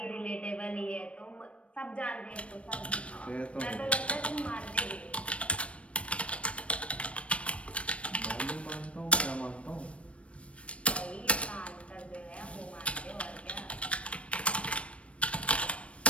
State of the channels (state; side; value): late; right; 0.062 ms